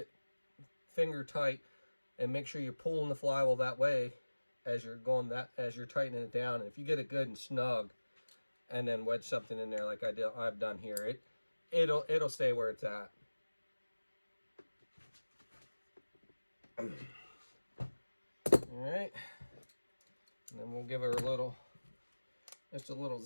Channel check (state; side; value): inverted; both; correlation -1.00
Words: finger tight and make sure you're pulling the flywheel that way as you're tightening it down. And if you get it good and snug, and then wedge something in there like I've done here, it'll stay where it's at. All right, and then we'll give her just a little